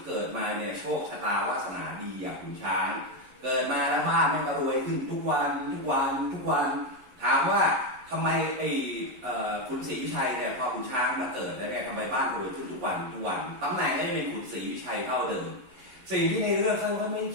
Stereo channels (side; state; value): left; late; 11 ms